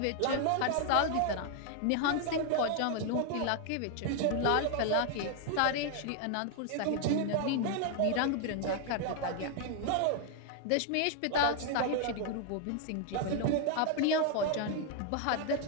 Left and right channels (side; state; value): both; different; correlation 0.00